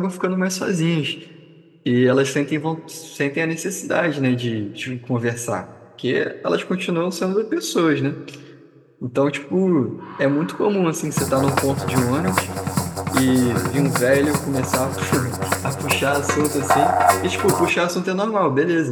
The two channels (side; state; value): both; identical; correlation 1.00